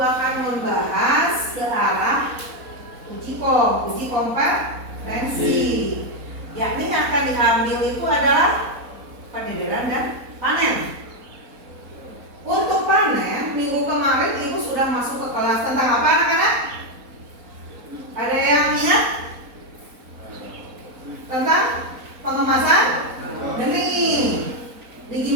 akan membahas ke arah uji kompetensi. Yakni yang akan diambil itu adalah pendederan dan panen. Untuk panen, minggu kemarin Ibu sudah masuk ke kelas tentang apa anak-anak? Ada yang ingat? Tentang pengemasan benih.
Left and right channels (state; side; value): late; left; 4.1 ms